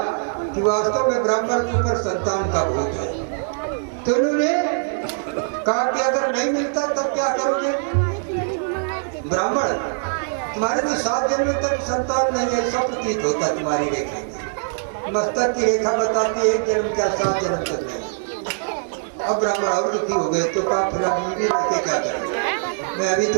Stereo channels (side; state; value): left; silent; digital silence